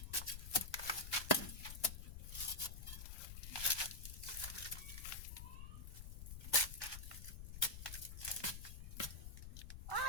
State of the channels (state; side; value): noise; left; rumble, 8 dB below the sound